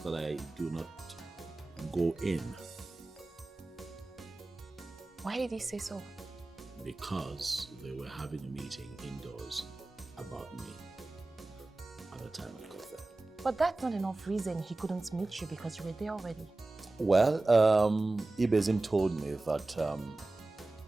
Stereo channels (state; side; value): quieter; left; 3.0 dB